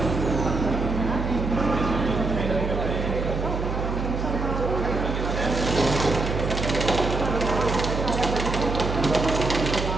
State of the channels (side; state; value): right; noise; hum, 3 dB below the sound